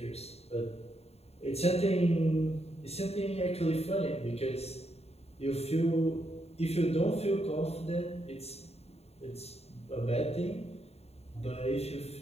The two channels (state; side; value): late; right; 0.30 ms